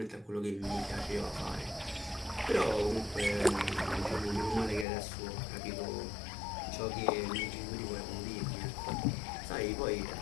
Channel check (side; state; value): right; drops out; at 4.9 s